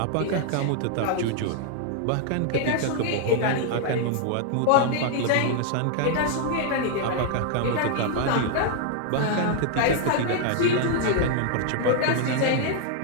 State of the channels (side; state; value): both; different; correlation 0.00